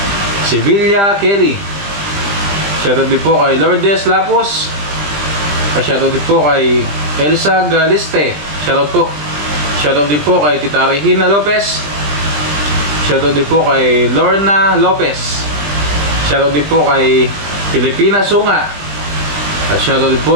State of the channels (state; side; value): late; left; 20 ms